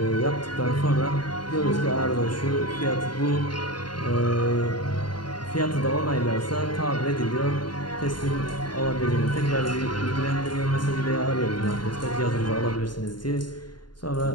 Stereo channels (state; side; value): late; right; 0.71 ms